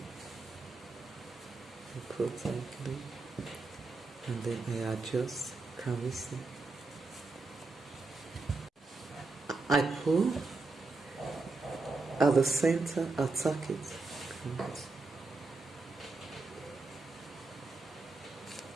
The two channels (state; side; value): quieter; left; 3.6 dB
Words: I pull tightly, and then I adjust. Can we see? I pull at the center, attack it.